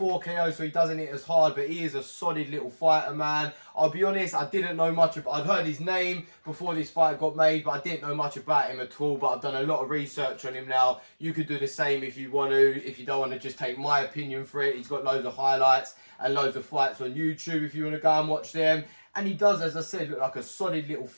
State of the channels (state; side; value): inverted; both; correlation -1.00